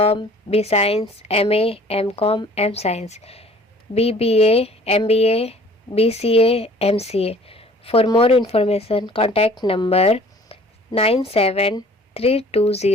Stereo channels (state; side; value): normal; both; correlation 0.52